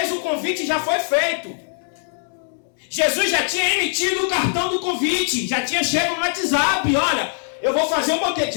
o convite já foi feito. Jesus já tinha emitido o cartão do convite, já tinha chegado no WhatsApp: olha, eu vou fazer um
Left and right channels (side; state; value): right; silent; digital silence